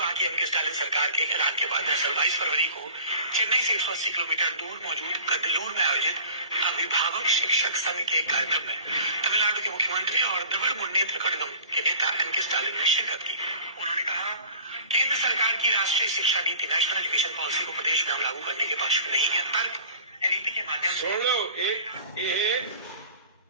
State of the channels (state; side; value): inverted; both; correlation -0.43